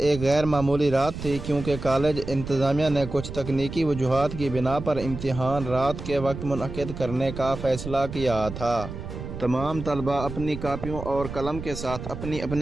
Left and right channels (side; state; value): right; noise; rumble, 9 dB below the sound